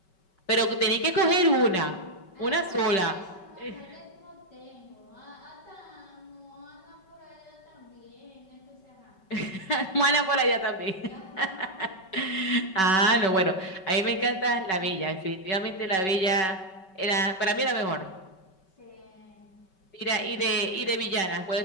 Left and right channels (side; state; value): right; late; 5.3 ms